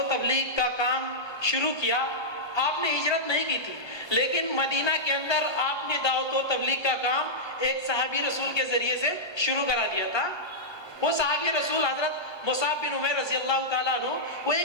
تبلیغ کا کام شروع کیا۔ آپ نے ہجرت نہیں کی تھی لیکن مدینہ کے اندر آپ نے دعوت و تبلیغ کا کام ایک صحابی رسول کے ذریعے سے شروع کرا دیا تھا۔ وہ صحابی رسول حضرت مصعب بن عمیر رضی اللہ تعالیٰ عنہ وہ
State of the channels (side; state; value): right; late; 1.2 ms